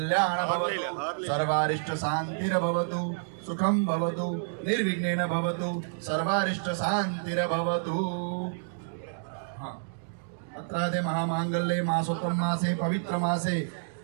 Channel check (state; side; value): silent; left; digital silence